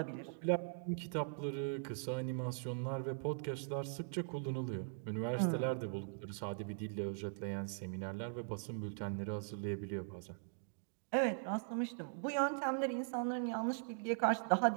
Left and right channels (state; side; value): silent; left; digital silence